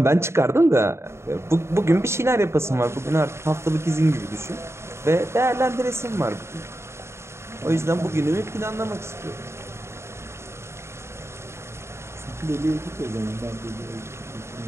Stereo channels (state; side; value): late; left; 0.13 ms